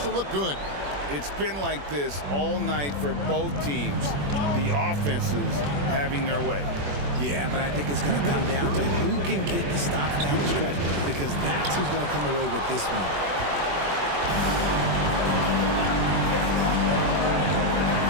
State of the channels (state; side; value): late; left; 21 ms